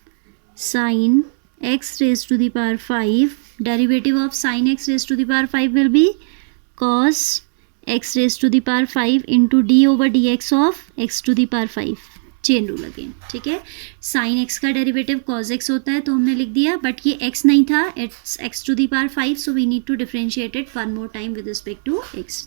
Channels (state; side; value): silent; left; 65 dB below the other